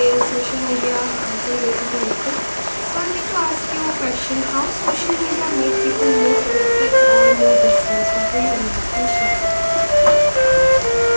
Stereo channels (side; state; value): both; inverted; correlation -1.00